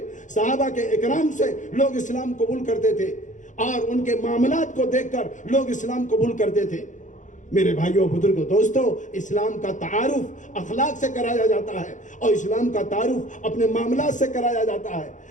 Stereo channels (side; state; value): right; late; 0.36 ms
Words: صحابہ کے اکرام سے لوگ اسلام قبول کرتے تھے، اور ان کے معاملات کو دیکھ کر لوگ اسلام قبول کرتے تھے۔ میرے بھائیوں بزرگوں دوستو، اسلام کا تعارف اخلاق سے کرایا جاتا ہے، اور اسلام کا تعارف اپنے معاملات سے کرایا جاتا ہے،